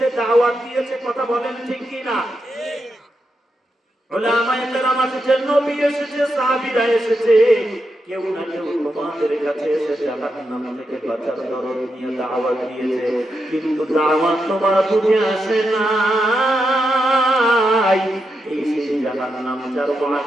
দাওয়াত দিয়েছে। কথা বলেন ঠিক কি না? উলামায়ে কেরাম এসেছে, নবী এসেছে, সাহাবীরা এসেছে, কেউ না কেউ তোমাদের কাছে এসে জাহান্নাম থেকে বাঁচার দরদ নিয়ে দাওয়াত দিয়েছে, কিন্তু দাওয়াত তোমার বুঝে আসে না। এই সেই জাহান্নাম যার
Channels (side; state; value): both; normal; correlation 0.85